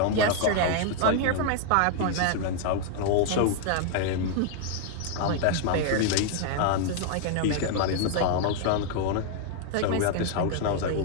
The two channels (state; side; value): different; both; correlation 0.00